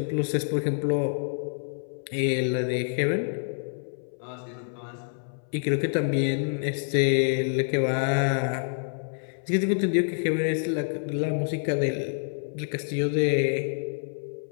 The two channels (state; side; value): silent; right; 60 dB below the other